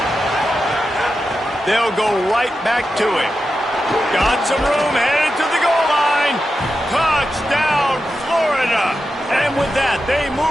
They'll go right back to him. Got some room, headed to the goal line. Touchdown, Florida. And with that, they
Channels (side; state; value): both; normal; correlation 0.90